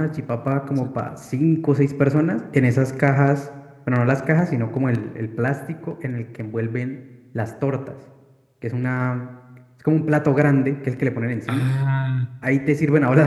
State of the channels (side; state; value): both; identical; correlation 1.00